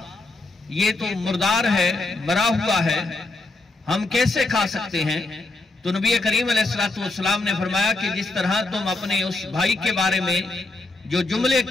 یہ تو مردار ہے، مرا ہوا ہے، ہم کیسے کھا سکتے ہیں؟ تو نبی کریم علیہ السلام نے فرمایا کہ جس طرح تم اپنے اس بھائی کے بارے میں جو جملے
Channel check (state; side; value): quieter; right; 3.2 dB